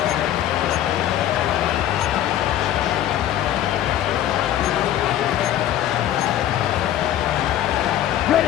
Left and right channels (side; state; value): right; quieter; 12.0 dB